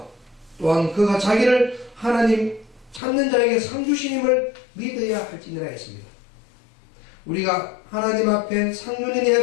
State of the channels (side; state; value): right; drops out; at 3.0 s